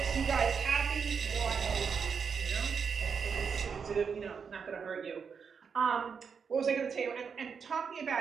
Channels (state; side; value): quieter; left; 6.2 dB